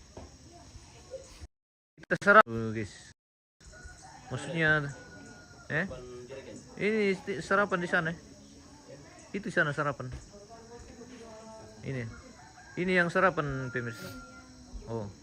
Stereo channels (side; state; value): both; identical; correlation 1.00